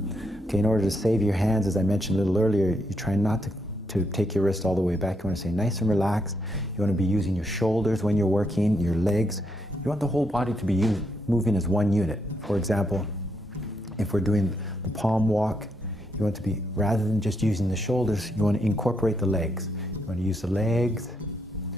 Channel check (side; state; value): both; normal; correlation 0.78